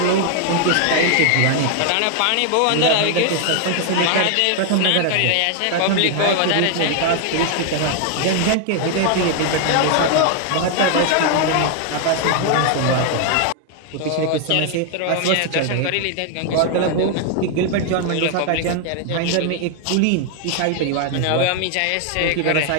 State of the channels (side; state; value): both; different; correlation 0.00